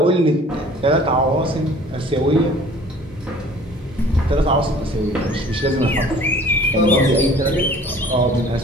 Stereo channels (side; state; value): both; normal; correlation 0.50